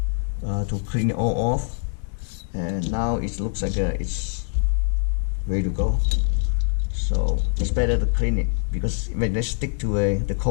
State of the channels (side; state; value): right; silent; 57 dB below the other